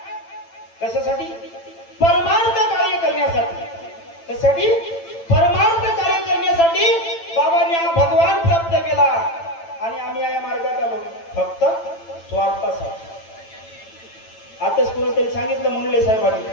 कशासाठी? परमार्थ कार्य करण्यासाठी. कशासाठी? परमार्थ कार्य करण्यासाठी बाबांनी हा भगवान प्राप्त केला आणि आम्ही या मार्गात आलो फक्त स्वार्थासाठी. आताच कोणीतरी सांगितलं मुंडले साहेबांनी,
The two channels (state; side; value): late; right; 8.9 ms